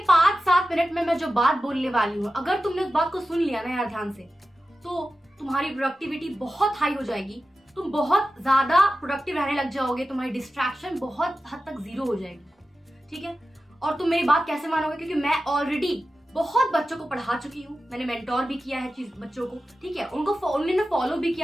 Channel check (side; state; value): both; normal; correlation 0.93